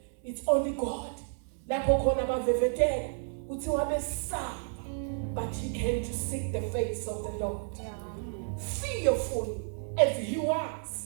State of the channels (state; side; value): silent; left; 57 dB below the other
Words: it's only God. Lapho khona bavevetela uthi wabesaba, but he came to seek the face of the Lord. Fearful as he